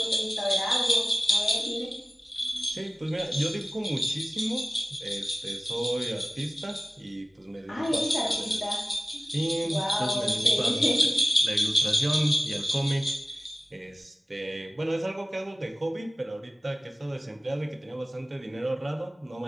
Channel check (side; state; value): both; normal; correlation 0.95